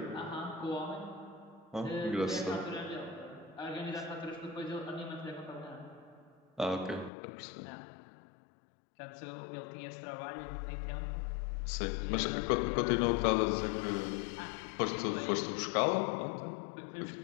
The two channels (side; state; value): right; drops out; at 7.1 s